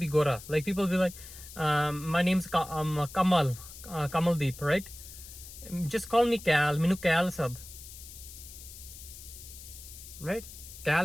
Gora. Like, people be like, my name's Kamaldeep, right? Just call me Cal. Minu Cal sad. Right?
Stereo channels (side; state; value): left; noise; hiss, 15 dB below the sound